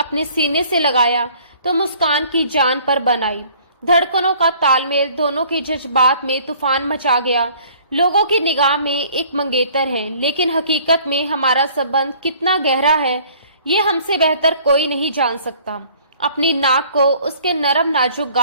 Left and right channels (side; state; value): both; inverted; correlation -0.55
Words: सीने से लगाया तो मुस्कान की जान पर बन आई। धड़कनों का तालमेल, दोनों के जज्बात में तूफान मचा गया। लोगों की निगाह में एक मंगेतर है, लेकिन हकीकत में हमारा संबंध कितना गहरा है ये हमसे बेहतर कोई नहीं जान सकता। अपनी नाक को उसके नरम नाजुक